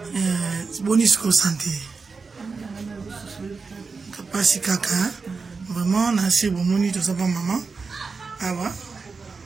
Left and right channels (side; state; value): left; quieter; 4.6 dB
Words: Bonjour santé. Kapasi kaka. Vraiment merci bon moni to saba maman. Ah ouais.